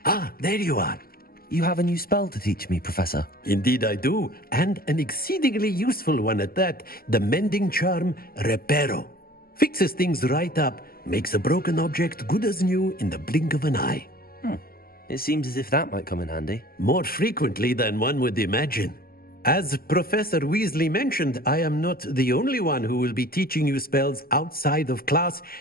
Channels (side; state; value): right; late; 0.43 ms